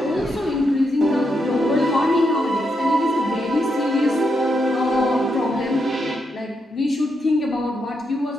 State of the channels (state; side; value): normal; both; correlation 0.82